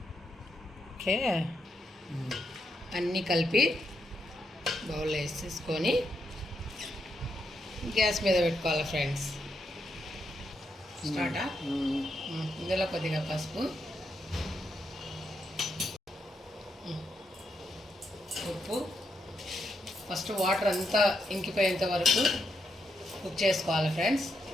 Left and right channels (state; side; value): normal; both; correlation 0.81